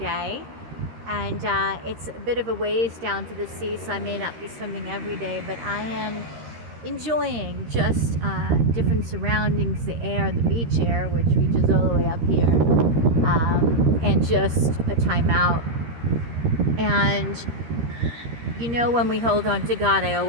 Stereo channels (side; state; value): left; late; 13 ms